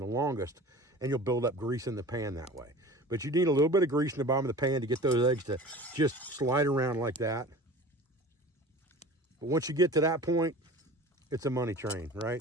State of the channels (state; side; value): normal; both; correlation 0.39